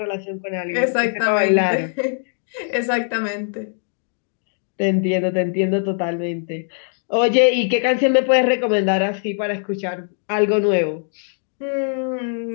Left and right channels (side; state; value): right; silent; digital silence